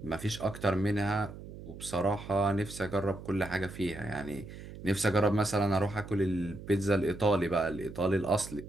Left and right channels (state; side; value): noise; right; hum, 13 dB below the sound